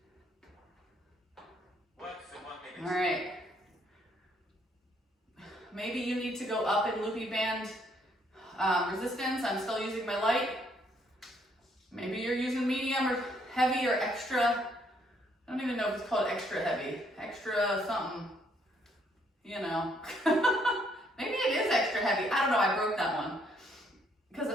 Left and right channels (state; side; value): normal; both; correlation 0.69